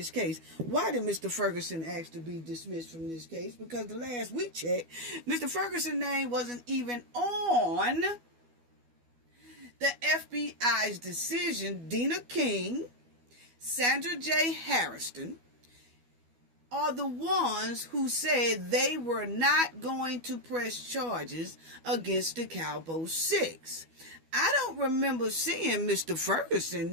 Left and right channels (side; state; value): left; late; 12 ms